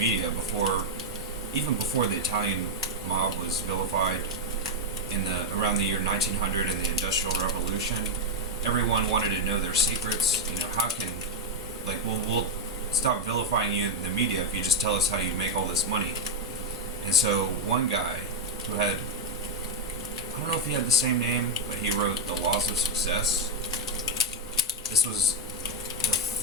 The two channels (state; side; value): normal; both; correlation 0.03